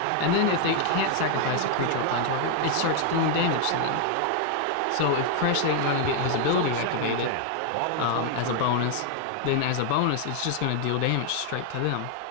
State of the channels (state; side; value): different; both; correlation 0.00